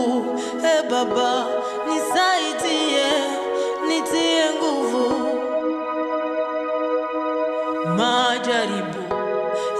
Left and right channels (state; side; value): identical; both; correlation 1.00